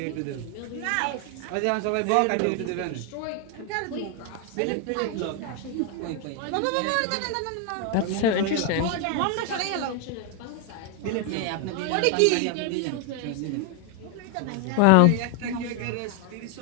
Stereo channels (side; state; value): both; different; correlation 0.01